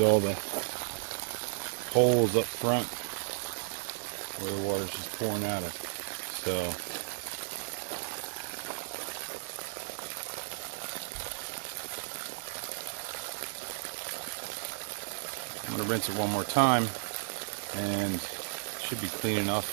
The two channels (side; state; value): left; silent; 55 dB below the other